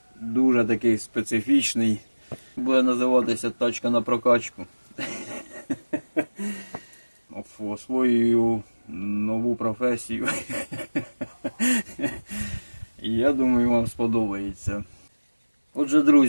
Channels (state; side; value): inverted; both; correlation -1.00